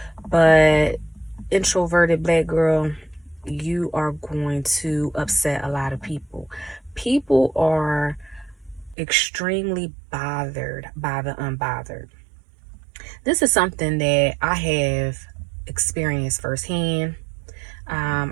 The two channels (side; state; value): left; drops out; at 9.0 s